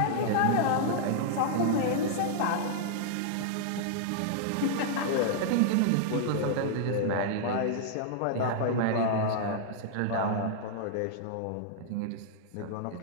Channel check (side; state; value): both; different; correlation -0.01